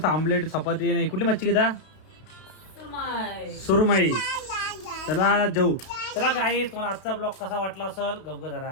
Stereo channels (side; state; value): right; late; 32 ms